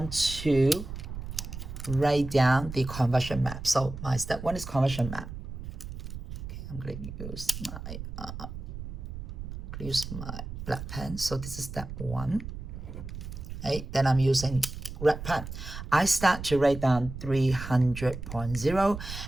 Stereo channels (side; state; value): right; noise; rumble, 9 dB below the sound